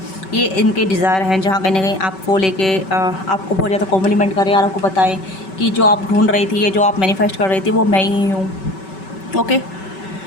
ये इनके डिज़ायर हैं, जहाँ कहीं ना कहीं आपको लेके आपको बहुत ज़्यादा कॉम्प्लीमेंट करें और आपको बताएं कि जो आप ढूंढ रही थी, ये जो आप मैनिफेस्ट कर रही थी, वो मैं ही हूँ। ओके,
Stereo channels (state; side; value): late; right; 5.2 ms